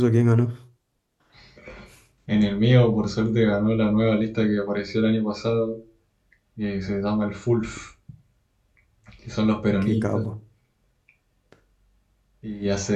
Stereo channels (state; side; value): identical; both; correlation 1.00